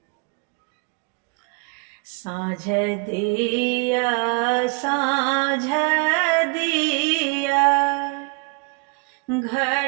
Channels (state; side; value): quieter; left; 31.5 dB